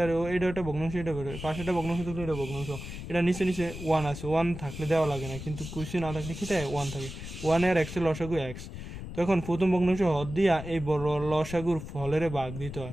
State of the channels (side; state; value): left; noise; rumble, 10 dB below the sound